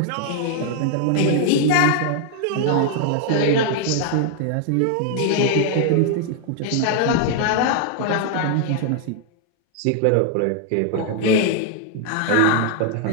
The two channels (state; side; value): different; both; correlation 0.00